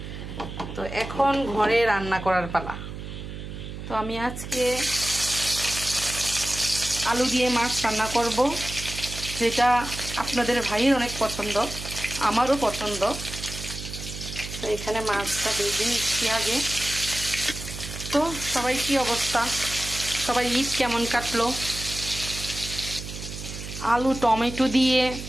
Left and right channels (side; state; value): right; noise; hum, 9 dB below the sound